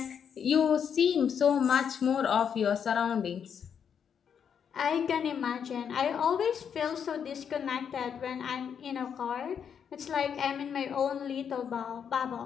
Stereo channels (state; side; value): quieter; right; 7.6 dB